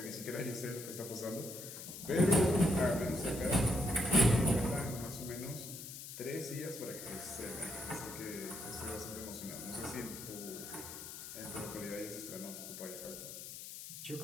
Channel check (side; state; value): left; noise; hiss, 10 dB below the sound